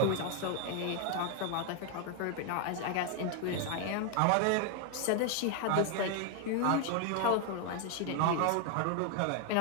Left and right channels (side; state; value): both; different; correlation 0.00